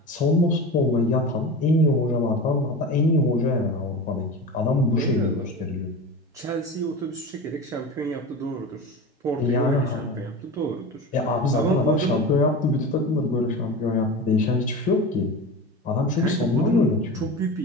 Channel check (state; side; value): normal; both; correlation 0.28